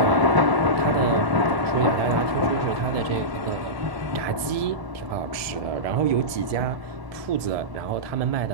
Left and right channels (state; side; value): late; left; 1.7 ms